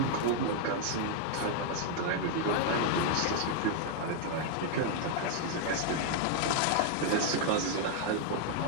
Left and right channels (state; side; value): different; both; correlation 0.00